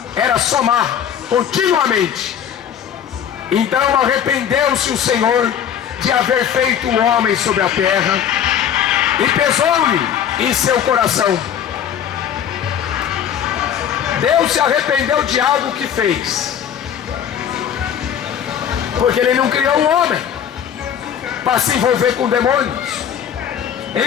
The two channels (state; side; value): quieter; right; 9.1 dB